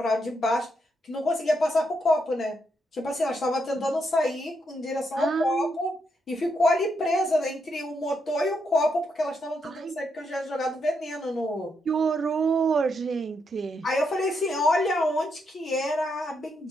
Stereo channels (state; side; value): normal; both; correlation 0.80